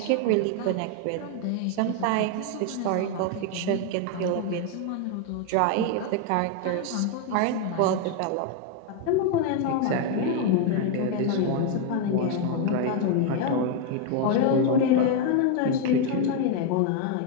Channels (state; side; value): different; both; correlation 0.01